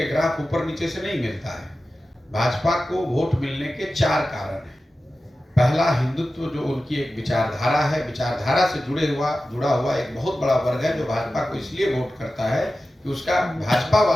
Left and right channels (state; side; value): normal; both; correlation 0.94